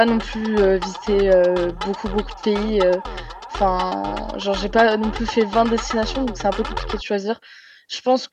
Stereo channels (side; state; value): both; identical; correlation 1.00